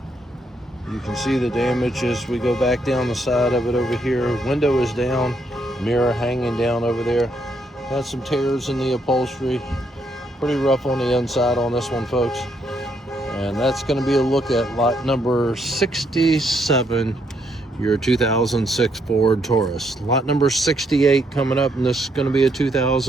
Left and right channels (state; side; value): normal; both; correlation 0.74